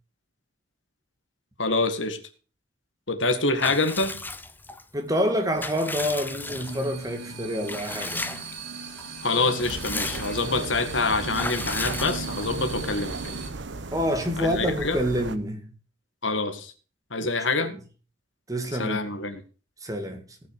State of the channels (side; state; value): both; normal; correlation 0.17